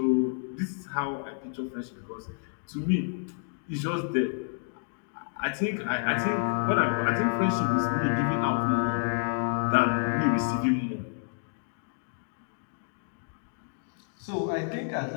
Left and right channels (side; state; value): right; silent; 58 dB below the other